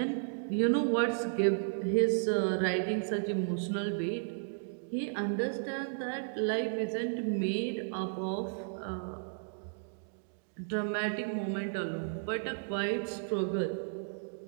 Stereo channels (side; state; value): left; silent; digital silence